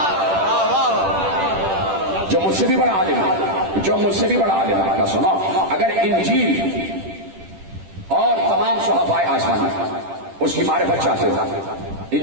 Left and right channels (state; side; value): late; left; 10 ms